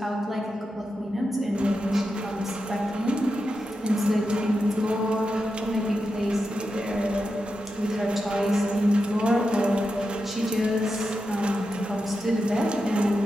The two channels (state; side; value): normal; both; correlation 0.88